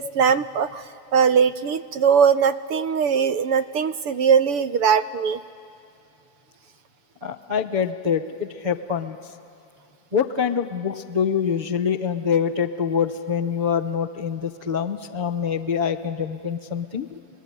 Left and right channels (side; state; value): left; late; 6.9 ms